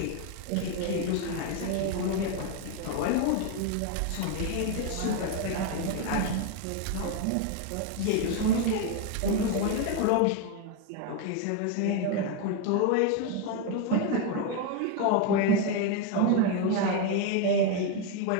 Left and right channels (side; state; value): both; different; correlation 0.02